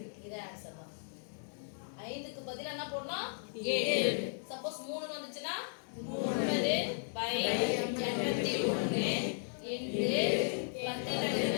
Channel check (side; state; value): right; silent; digital silence